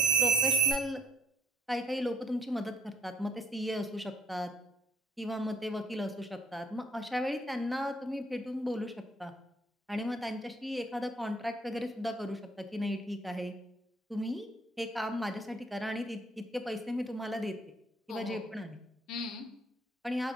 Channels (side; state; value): both; normal; correlation 0.61